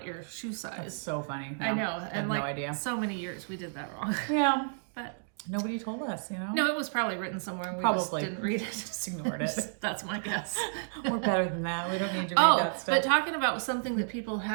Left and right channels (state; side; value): silent; left; digital silence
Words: your shoe size. That's so funny. I know, and like no idea. so many years we did that wrong. Yeah, but nobody told us, you know. No, it was probably written somewhere and we just didn't read it. Just ignored it. That's my guess. We're better than that. We don't need to read that stuff. But talking about something that people